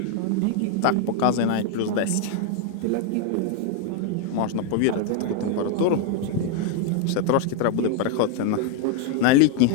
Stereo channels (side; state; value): both; different; correlation 0.01